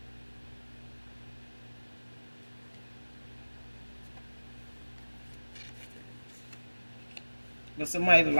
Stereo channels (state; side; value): inverted; both; correlation -1.00